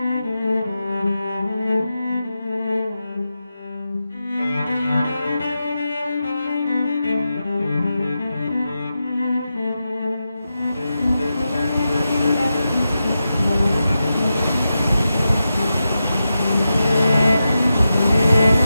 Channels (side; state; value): both; inverted; correlation -0.90